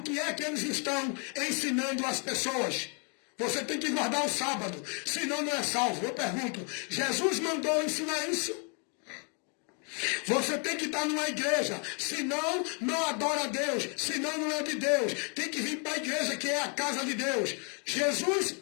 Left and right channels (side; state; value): right; quieter; 37.9 dB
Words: que é que eles estão ensinando às pessoas? Você tem que guardar o sábado, senão não é salvo. Eu pergunto, Jesus mandou ensinar isso? Você tem que estar numa igreja, senão não adora a Deus, senão não é de Deus. Tem que vir para a igreja, que é a casa de Deus. Jesus